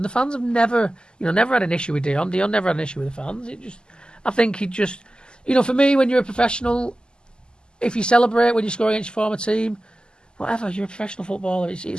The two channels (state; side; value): late; right; 0.047 ms